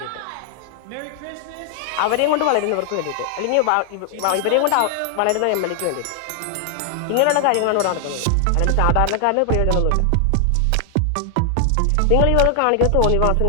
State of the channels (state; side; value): different; both; correlation 0.00